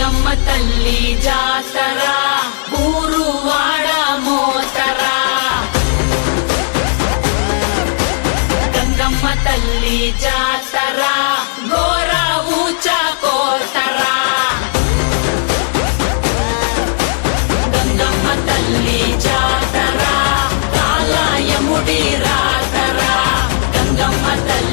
తల్లి జాతర ఊరు వాడ మోతరా గంగమ్మ తల్లి జాతర ఘోర ఊచ కోతరా గంగమ్మ తల్లి జాతర కాలాయముడి రాతరా గంగమ్మ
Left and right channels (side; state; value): right; silent; digital silence